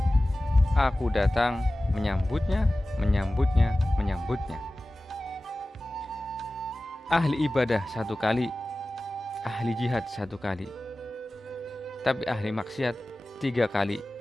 aku datang menyambutnya, menyambutnya, menyambutnya. Ahli ibadah 1 kali, ahli jihad 1 kali, tapi ahli maksiat 3 kali.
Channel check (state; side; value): normal; both; correlation 0.96